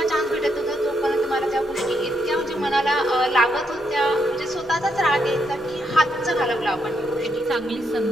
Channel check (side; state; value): both; normal; correlation 0.78